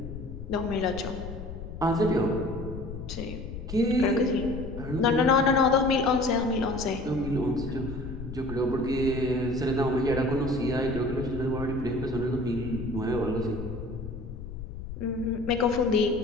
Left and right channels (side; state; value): left; noise; rumble, 9 dB below the sound